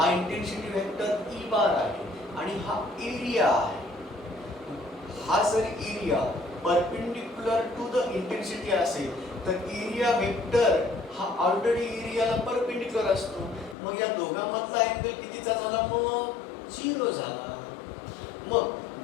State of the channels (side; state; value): right; drops out; at 13.8 s